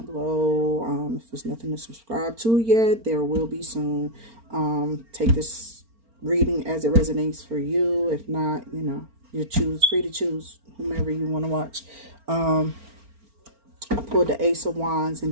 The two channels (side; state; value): left; late; 4.4 ms